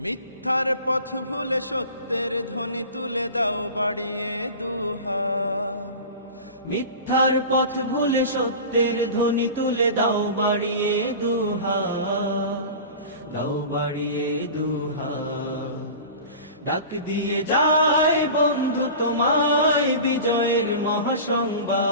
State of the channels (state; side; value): inverted; both; correlation -0.35